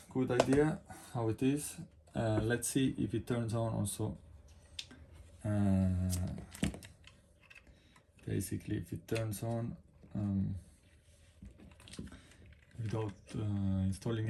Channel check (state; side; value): identical; both; correlation 1.00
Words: good idea how it is. Let's see if it turns on also. Basically, if it turns on without installing